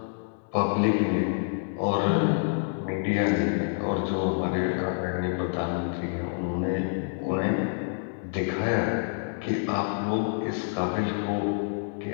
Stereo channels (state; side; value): silent; right; digital silence